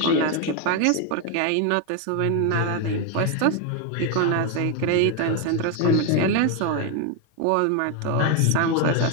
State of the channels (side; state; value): both; different; correlation 0.01